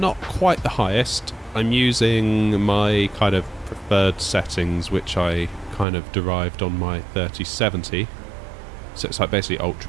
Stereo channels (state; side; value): drops out; left; at 5.9 s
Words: quite the highest. I'm using my kind of preferred settings, which I kind of derived on my 3070. So it's like basically